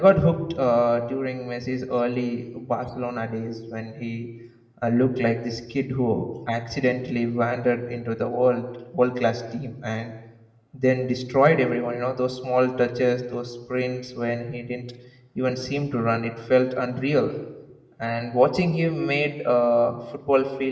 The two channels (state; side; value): identical; both; correlation 1.00